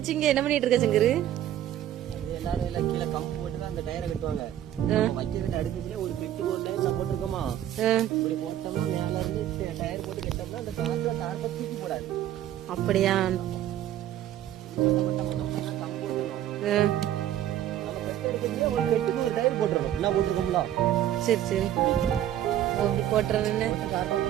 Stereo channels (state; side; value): quieter; left; 11.9 dB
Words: இங்க என்ன பண்ணிட்டு இருக்க சங்கரு? எல்லாரும் எல்லாம் கீழே கம்பு போட்டுதான் அந்த டயரை கட்டுவாங்க. வைக்கிற அடுக்கத்துல ஒரு பெட்டு போட்டு நான் போட்டிருக்கோமா, இப்படி போட்டோம்னா மேல இருந்து டயர் போட்டு கட்டோம்னா அந்த காற்று தாரத்தை தூக்கி போடாது. அப்படியா? கம்பு போட்டுக்கணும். நம்ம பெட்டு எடுக்கிறதுல ஒரு பெட்டுக்கு ஒரு டயர் போட்டுருக்கோம். என்ன போட்டிருக்கோம்ல? சரி சரி, அப்படி போட்டுறேன்னு